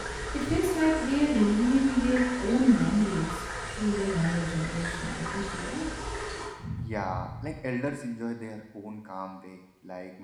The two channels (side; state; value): both; identical; correlation 1.00